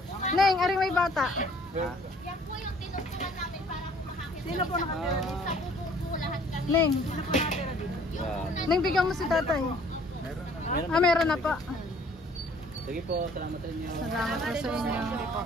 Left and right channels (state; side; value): normal; both; correlation 0.57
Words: Neng, ari may bata. Yan po yung tinutulan namin para po makakita. Sino po nakatira dito? Sa bubuo lahat kami. Neng, Wow. Neng bigyan mo si tatay. Meron. Ah, meron na pa. Sige po, salamat sa inyo. Salamat po sa inyo.